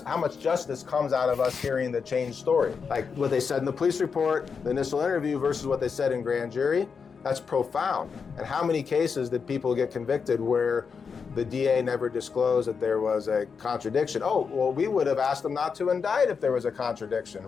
how much justice comes out of us hearing the changed story. Like what they said in the police report, the initial interview versus what they said in grand jury. That's profound. And how many cases did people get convicted where the DA never disclosed that there was a contradiction? Oh, well, we would have asked them not to indict if there was a contradiction.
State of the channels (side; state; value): right; quieter; 5.8 dB